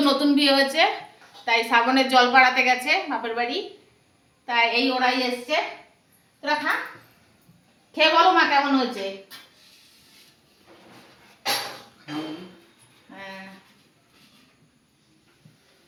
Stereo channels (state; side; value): identical; both; correlation 1.00